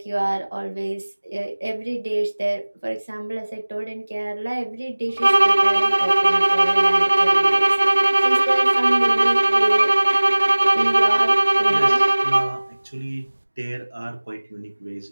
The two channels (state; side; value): inverted; both; correlation -1.00